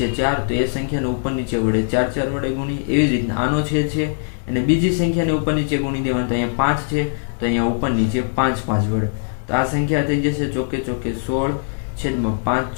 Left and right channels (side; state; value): right; silent; digital silence